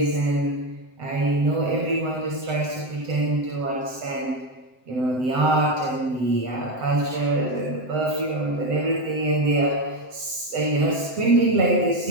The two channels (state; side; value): late; left; 7.8 ms